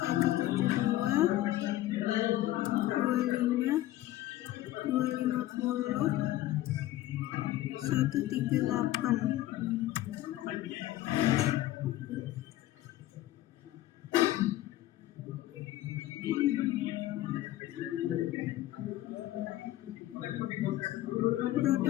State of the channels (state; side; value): quieter; right; 15.1 dB